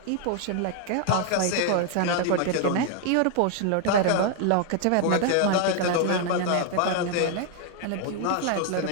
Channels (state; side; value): different; both; correlation 0.00